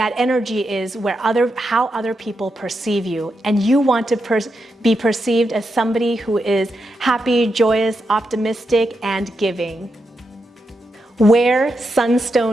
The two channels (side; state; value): both; normal; correlation 0.85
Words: energy is, where how other people perceive you. And you want to be perceived as somebody who is happy, joyous, optimistic, and giving. Wear